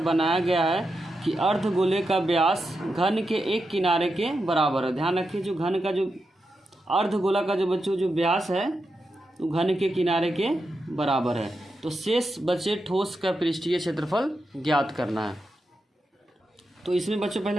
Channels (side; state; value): both; normal; correlation 0.87